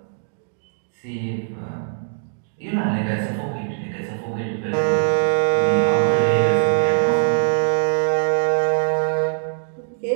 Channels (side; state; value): left; silent; digital silence